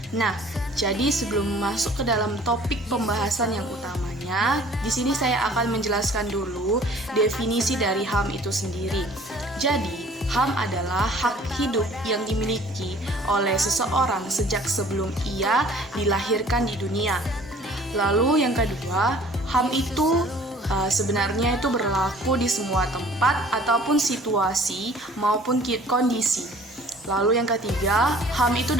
Nah, jadi sebelum masuk ke dalam topik pembahasan yang utamanya, di sini saya akan menjelaskan dulu definisi dari HAM itu sendiri. Jadi, HAM adalah hak hidup yang dimiliki oleh seseorang sejak sebelum ia dilahirkan di dunia. Lalu yang kedua, HAM itu sebenarnya itu berlaku di semua tempat ataupun situasi maupun kondisi. Lalu yang ketiga, HAM itu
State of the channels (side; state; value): both; normal; correlation 0.52